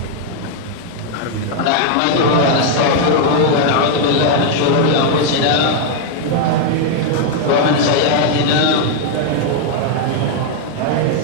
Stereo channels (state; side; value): different; both; correlation 0.00